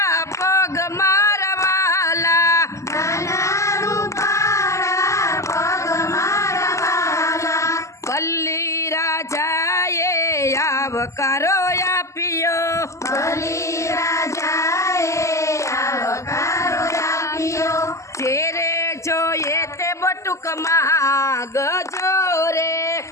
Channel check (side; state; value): right; late; 0.14 ms